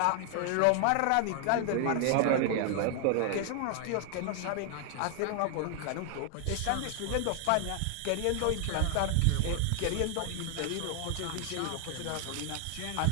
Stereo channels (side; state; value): both; different; correlation 0.00